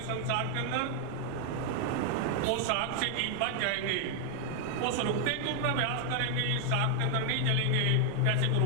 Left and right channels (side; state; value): both; different; correlation 0.00